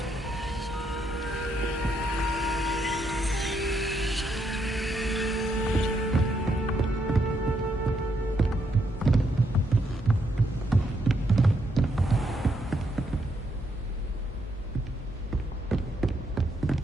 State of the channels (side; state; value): both; normal; correlation 0.76